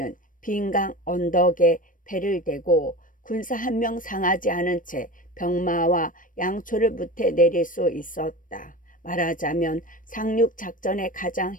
빈 강 언덕에 배를 대고 군사 한 명 상하지 않은 채 병마와 양초를 무태 내릴 수 있었다. 말하자면 상륙 작전의 가장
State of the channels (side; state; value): right; late; 0.39 ms